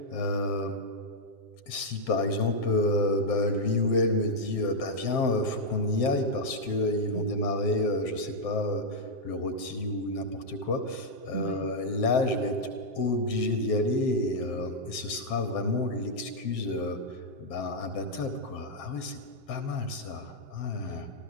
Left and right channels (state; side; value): late; right; 7.6 ms